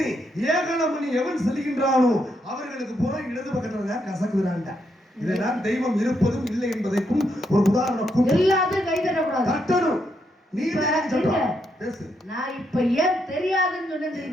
ஏகலமணி எவன் செல்கின்றானோ அவர்களுக்கு பூரா இடது பக்கத்துல தான் கசக்குறான்டா. இதெல்லாம் தெய்வம் இருப்பதும் இல்லை என்பதற்கும் ஒரு உதாரணம். எல்லாத்தையும் கை தட்டக்கூடாது, தட்டணும். நீ பேசு. நான் இப்ப ஏன் தெரியாதுன்னு சொன்னேன்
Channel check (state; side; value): normal; both; correlation 0.78